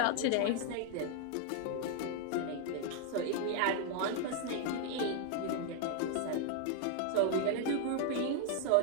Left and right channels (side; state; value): both; different; correlation 0.00